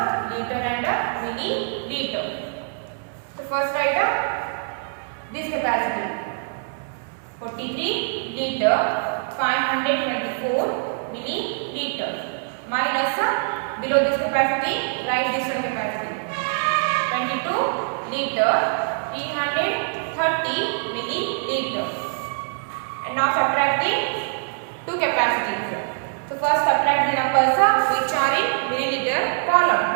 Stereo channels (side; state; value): left; silent; digital silence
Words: liter and milliliter. So first write this capacity, 43 liter, 524 milliliter, minus below this capacity, write this one capacity, 22 liter, 330 milliliter. And now subtract the two capacities. So first subtract the numbers which are in milliliter column.